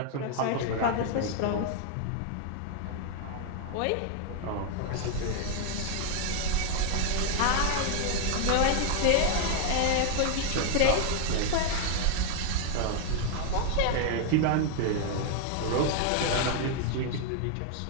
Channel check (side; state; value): both; different; correlation 0.01